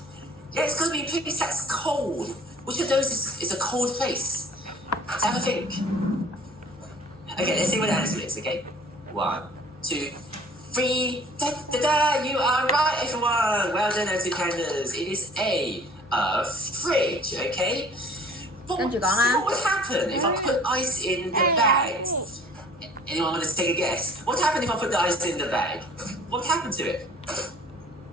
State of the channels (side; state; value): both; normal; correlation 0.51